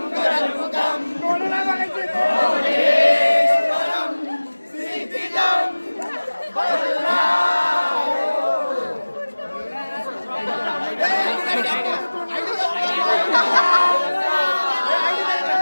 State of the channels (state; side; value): inverted; both; correlation -1.00